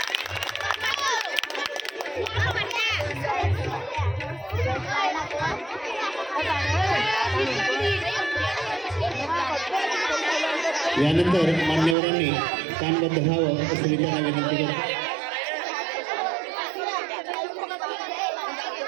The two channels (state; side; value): drops out; left; at 12.0 s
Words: यानंतर मान्यवरांनी कानबद्ध व्हावं असं मी त्यांना विनंती करतो.